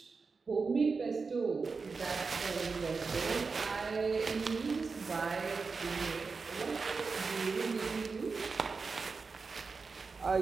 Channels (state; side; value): quieter; left; 4.6 dB